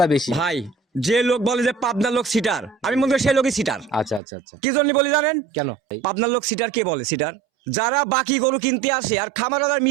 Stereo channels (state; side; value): drops out; left; at 4.2 s